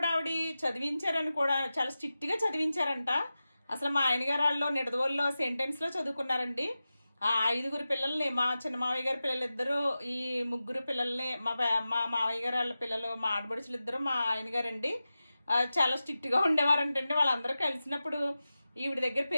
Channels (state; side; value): inverted; both; correlation -0.94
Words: ఆవిడ చదివించారని కూడా చాలా స్ట్రిక్ట్‌గా చదివించారంట. అసలు మా ఆయన గారు ఆళ్ళు నిడదవోలులో సెయింట్ ఆన్స్‌లో చదువుకున్నారండి. ఆ 5 పిల్లల్ని మా చిన్న మావయ్య గారి పిల్లలిద్దరూ, ఈ 3 పిల్లల్ని మా మావయ్య గారు వాళ్ళ పిల్లలు, మా ఆడపడుచులిద్దరూ మా ఆయన గారండి. చాలా స్ట్రిక్ట్‌గా ఉండేవారంటండి. వాళ్ళందరూ కలిసినప్పుడు ఈవిడ దగ్గర